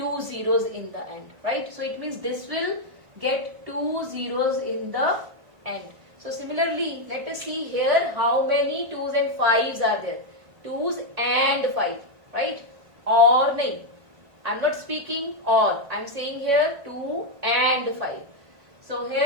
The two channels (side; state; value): left; late; 1.5 ms